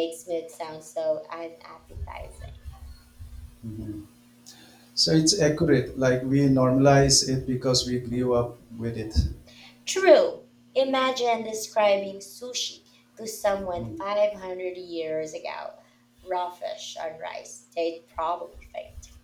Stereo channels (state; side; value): identical; both; correlation 1.00